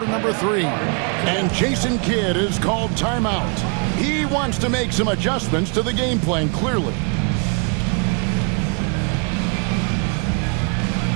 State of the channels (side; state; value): left; quieter; 37.8 dB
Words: number 3. And Jason Kidd is called timeout. He wants to make some adjustments to the game plan, clearly.